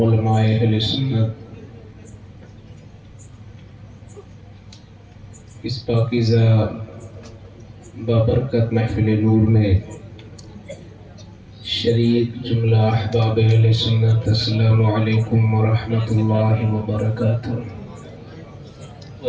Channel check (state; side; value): identical; both; correlation 1.00